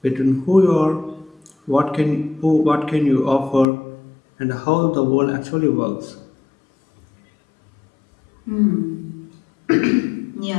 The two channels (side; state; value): right; drops out; at 3.7 s